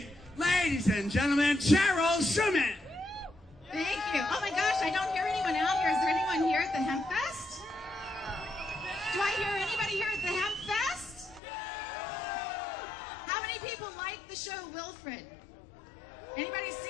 ladies and gentlemen, Cheryl Shuman. Thank you. Oh my gosh, I don't hear anyone out here. Is there anyone here at the Hempfest? Do I hear anybody here at the Hempfest? How many people like the show Wilfred? Anybody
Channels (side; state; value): right; drops out; at 11.4 s